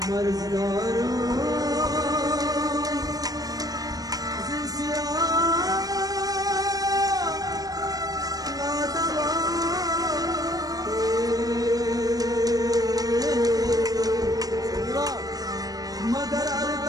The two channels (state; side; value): late; left; 0.18 ms